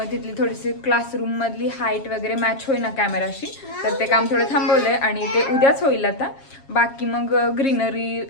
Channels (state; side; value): late; right; 7.3 ms